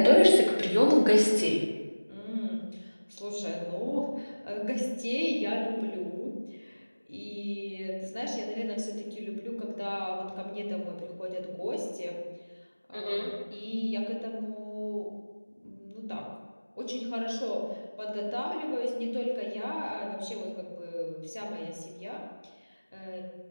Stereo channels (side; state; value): both; inverted; correlation -1.00